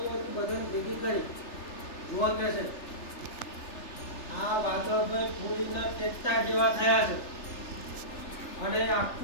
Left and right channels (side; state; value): right; late; 3.3 ms